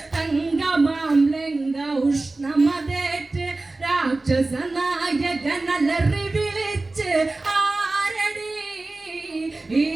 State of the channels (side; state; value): left; quieter; 3.2 dB